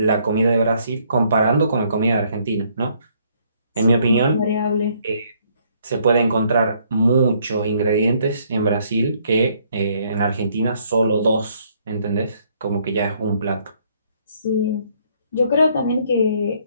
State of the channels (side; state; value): both; inverted; correlation -0.67